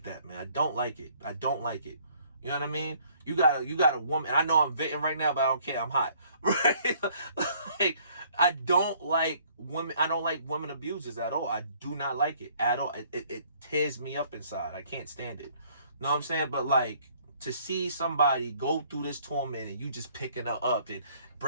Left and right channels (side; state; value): both; inverted; correlation -0.61